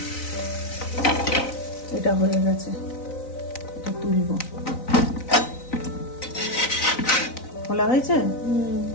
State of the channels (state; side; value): late; right; 3.9 ms